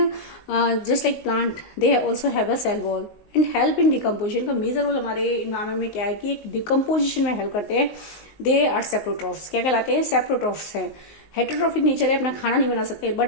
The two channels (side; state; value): right; late; 19 ms